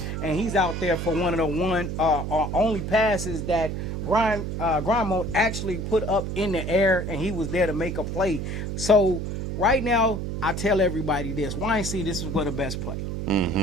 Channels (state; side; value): noise; right; hum, 4 dB below the sound